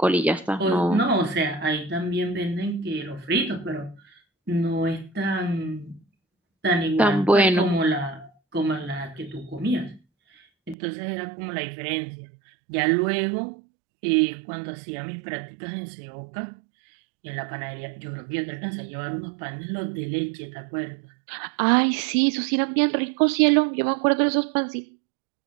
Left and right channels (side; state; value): left; drops out; at 10.8 s